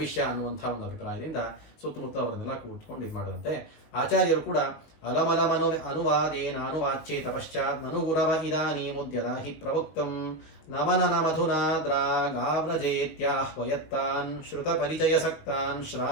ವಿಷಯ ಅನ್ನುವಂಥ ಒಂದು ಅಭಿಪ್ರಾಯದಿಂದ ಸುತ್ತಮುತ್ತ ಅವರನ್ನೆಲ್ಲ ಕೂತ್ಕೊಂಡು ಇದು ಮಾಡಿದಂತೆ. ಆಚಾರ್ಯರು ಕೂಡ ಅಲಮಲಮನು ಅನುವಾದೇನ ಅನುವಾಚ್ಯೇತ ಪಶ್ಚಾತ್ ನನು ಗುರವ ಇದಾನೀಮುದ್ಯದ ಹಿ ಪ್ರವಕ್ತಂ ನಮನನ ಮಧುನಾ ದ್ರಾಗಾವ್ರಜೇತ್ಯಾಹ್ವಯತ್ತಾನ್ ಶ್ರುತ ಪರಿಚಯ ಸಕ್ತಾನ್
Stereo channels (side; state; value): right; late; 19 ms